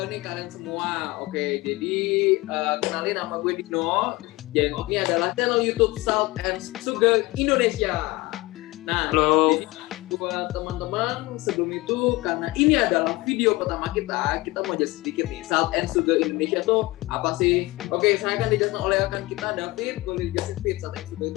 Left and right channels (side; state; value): right; quieter; 21.0 dB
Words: nih kalian semua? Oke, jadi kenalin nama gue Dino. Dan ini adalah channel YouTube Salt and Sugar Indonesia. Nah, Halo. jadi buat teman-teman sebelum itu, karena ini adalah video pertama kita mau jelasin sedikit nih, Salt and Sugar Indonesia tuh apa sih? Oke, saya akan dijelaskan oleh rekan kita, David. Boleh dijelasin, Fit, Salt and Sugar